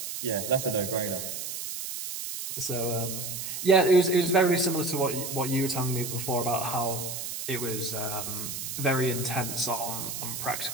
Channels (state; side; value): noise; right; hiss, 6 dB below the sound